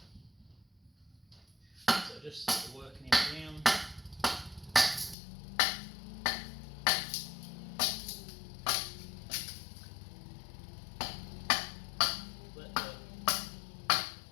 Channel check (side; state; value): right; drops out; at 5.2 s